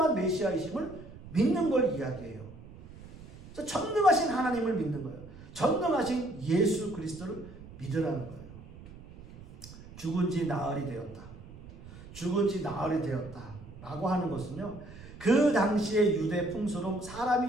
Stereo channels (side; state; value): right; noise; rumble, 17 dB below the sound